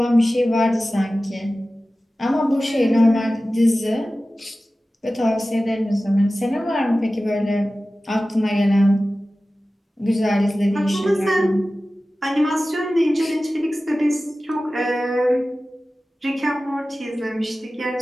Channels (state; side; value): normal; both; correlation 0.96